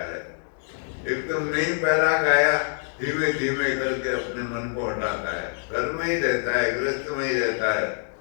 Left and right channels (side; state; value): right; silent; digital silence